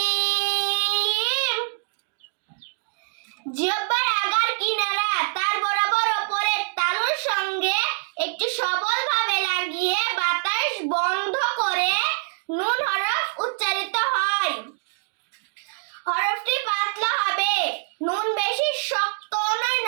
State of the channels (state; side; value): silent; left; 62 dB below the other